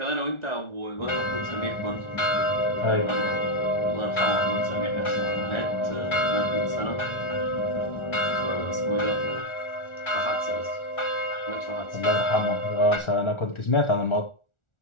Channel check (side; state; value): right; late; 1.4 ms